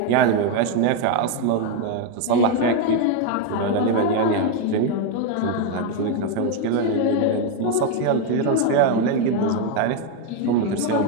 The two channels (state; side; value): different; both; correlation 0.02